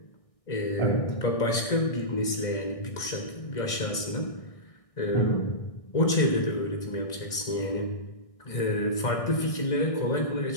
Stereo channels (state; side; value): late; right; 1.6 ms